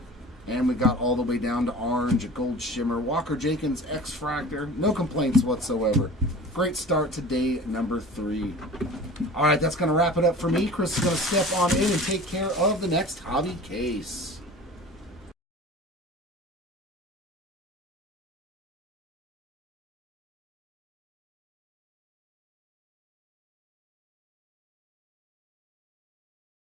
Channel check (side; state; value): both; normal; correlation 0.39